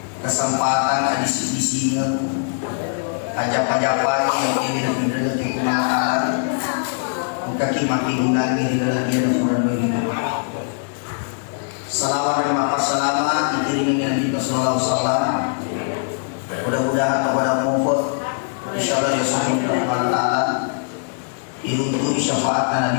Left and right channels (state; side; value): silent; right; digital silence